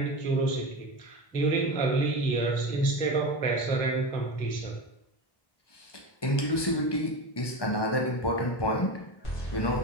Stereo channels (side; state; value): right; late; 1.2 ms